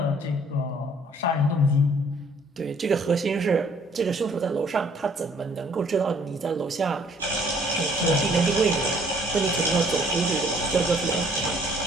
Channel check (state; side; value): normal; both; correlation 0.60